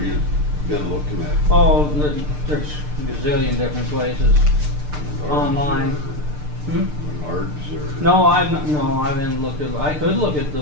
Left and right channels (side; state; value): left; late; 6.7 ms